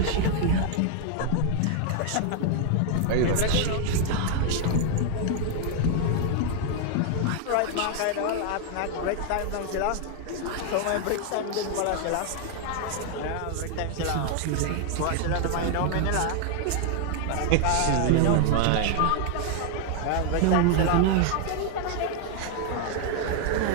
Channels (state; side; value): different; both; correlation 0.00